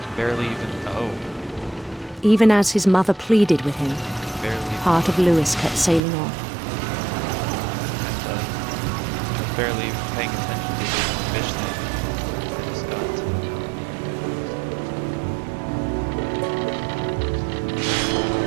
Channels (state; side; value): drops out; left; at 6.0 s